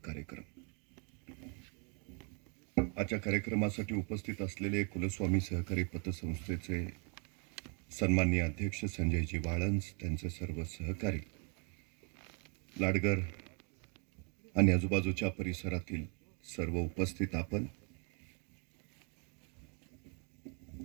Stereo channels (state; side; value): quieter; left; 37.2 dB